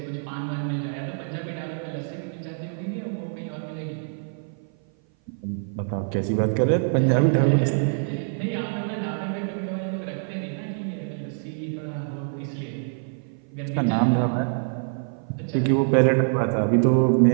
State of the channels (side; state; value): left; silent; 57 dB below the other